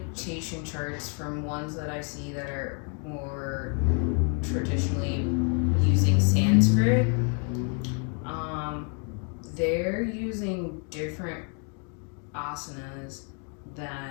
charts from ones that I see that are more traditionally using Sanskrit, they're using different asanas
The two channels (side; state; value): right; quieter; 39.7 dB